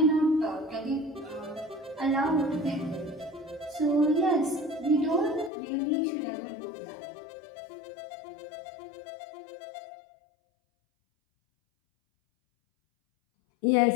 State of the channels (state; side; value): drops out; right; at 5.5 s